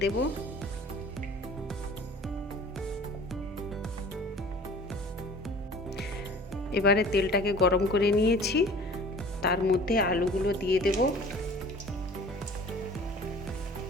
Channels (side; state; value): both; normal; correlation 0.46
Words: দেব। এবারে তেলটাকে গরম করে নিয়েছি, তার মধ্যে আলুগুলো দিয়ে দেব।